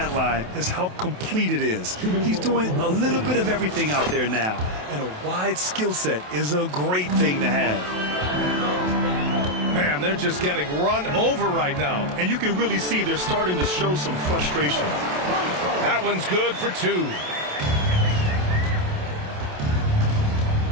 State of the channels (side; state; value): left; late; 27 ms